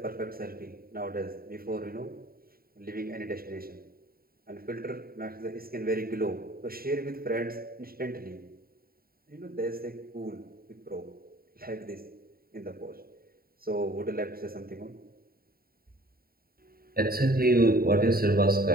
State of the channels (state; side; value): late; left; 0.43 ms